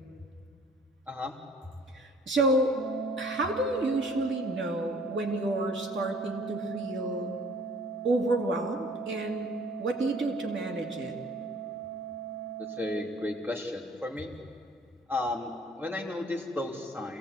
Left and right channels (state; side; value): normal; both; correlation 0.54